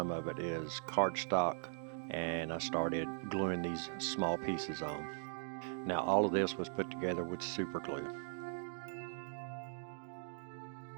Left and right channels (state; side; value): silent; left; digital silence